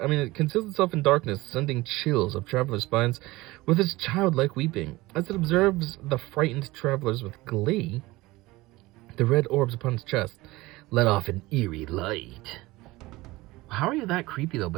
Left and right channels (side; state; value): left; quieter; 20.1 dB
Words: in darkness, sending chills up travelers' spines with its childlike weeping. As it observes the frightened travelers with glee, the red orbs upon its chest let off an eerie light. How are you that creepy, though,